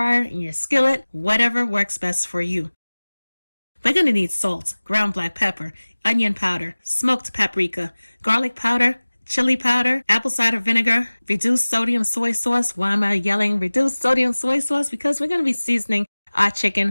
in your skillet, whatever works best for you. We're going to need salt, ground black pepper, onion powder, smoked paprika, garlic powder, chili powder, apple cider vinegar, reduced sodium soy sauce. Why am I yelling reduced sodium soy sauce? Because we're going to be seasoning our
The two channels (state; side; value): inverted; both; correlation -1.00